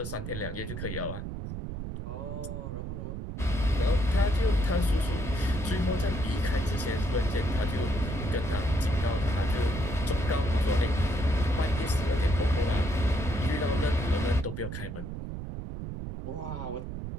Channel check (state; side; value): noise; right; rumble, 6 dB below the sound